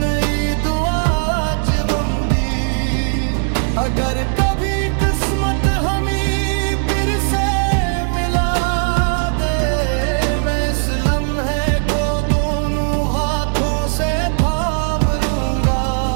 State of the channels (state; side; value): silent; left; 63 dB below the other